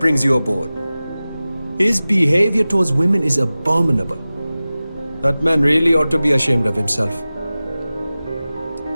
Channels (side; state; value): both; inverted; correlation -0.97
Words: you aboard? His behavior towards women is abominable. That man really ought to be ashamed of himself.